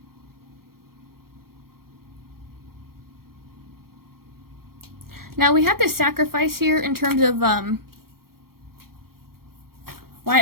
Now, we have this sacrifice here in terms of why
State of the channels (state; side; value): late; left; 0.94 ms